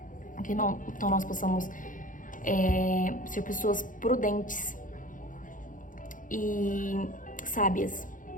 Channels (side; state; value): right; late; 0.38 ms